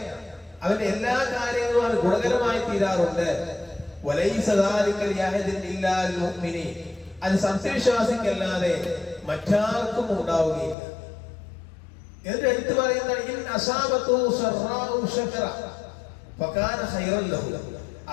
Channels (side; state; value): right; drops out; at 10.8 s